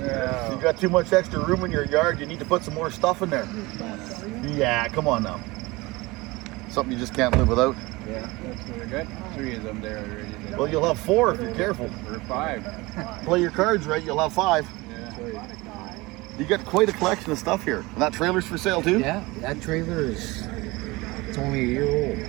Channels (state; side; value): quieter; left; 22.4 dB